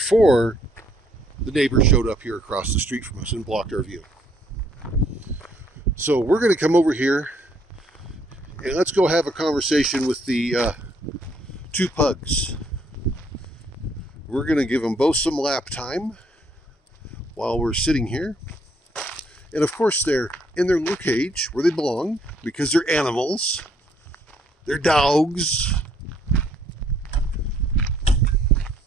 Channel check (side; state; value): both; normal; correlation 0.67